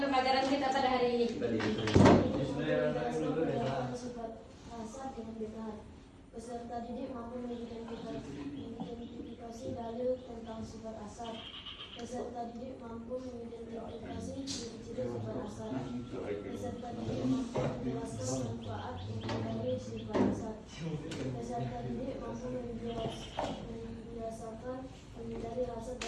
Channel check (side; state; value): both; identical; correlation 1.00